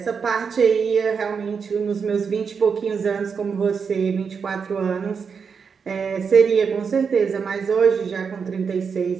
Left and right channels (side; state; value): left; quieter; 6.0 dB